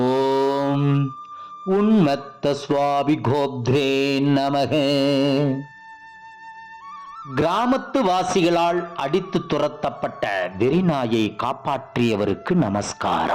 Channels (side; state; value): both; identical; correlation 1.00